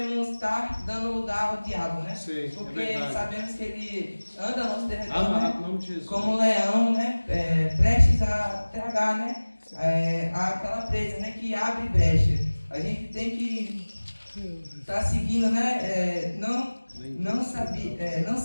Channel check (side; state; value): both; inverted; correlation -1.00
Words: estar dando lugar ao diabo, né? Sim, porque sabemos que ele anda ao nosso derredor, né? Como um leão, né? Prestes a tragar, né? Aquela presa, né? Que abre brecha. A gente tem que estar seguindo, né? Não